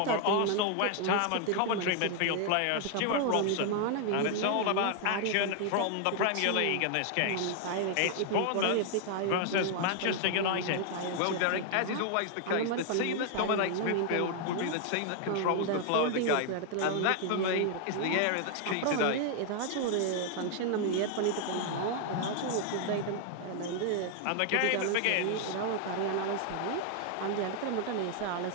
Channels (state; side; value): different; both; correlation 0.00